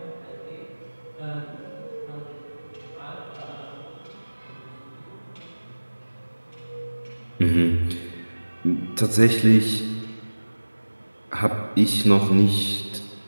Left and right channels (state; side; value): inverted; both; correlation -1.00